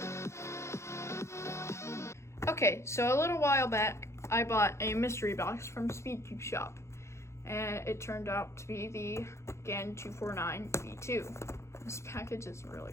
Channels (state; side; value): late; right; 0.13 ms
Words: Okay, so a little while back I bought a mystery box from Speedcube Shop, and it turned out to be the GAN 249 V2. This package is